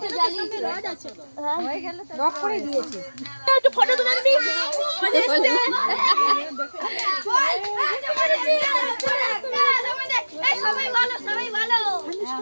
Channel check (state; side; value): inverted; both; correlation -1.00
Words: জ্বালিয়েছে রড আছে হ্যাঁ হয়ে গেল তো লক করে দিয়েছে একটু ফটো তুলে দিবি এই সবাই ভালো